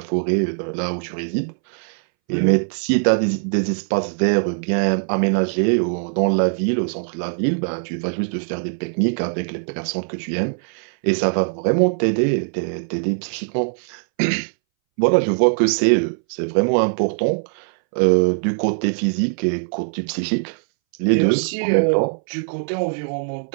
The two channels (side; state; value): left; silent; 63 dB below the other